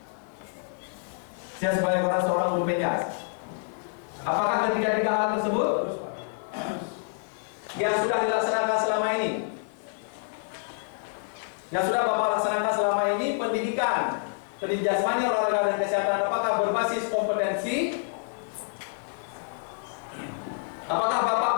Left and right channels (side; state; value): right; silent; 60 dB below the other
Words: Saya sebagai seorang guru penjas. Apakah ketiga hal tersebut yang sudah dilaksanakan selama ini? Yang sudah Bapak laksanakan selama ini, pendidikan jasmani, olahraga dan kesehatan, apakah berbasis kompetensi? Apakah Bapak